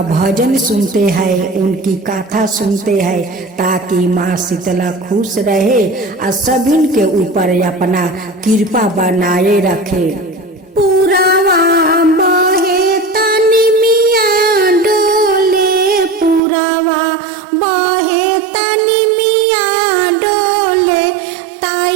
भजन सुनते हैं, उनकी कथा सुनते हैं, ताकि माँ शीतला खुश रहे और सभी के ऊपर अपना कृपा बनाए रखे। पुरावा बहे तनी मिया डोले, पुरावा बहे तनी मिया डोले,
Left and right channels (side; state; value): left; drops out; at 16.4 s